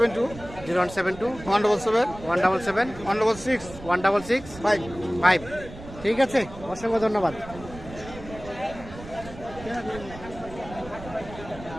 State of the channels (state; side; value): noise; right; rumble, 15 dB below the sound